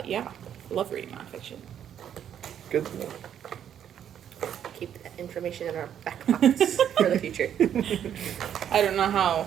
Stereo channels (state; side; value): quieter; left; 9.5 dB